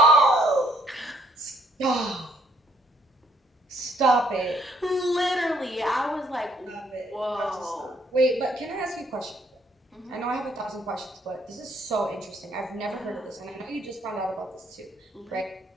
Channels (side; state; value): both; normal; correlation 0.66